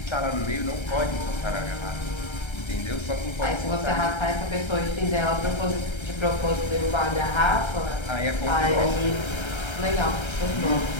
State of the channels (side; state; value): right; late; 1.3 ms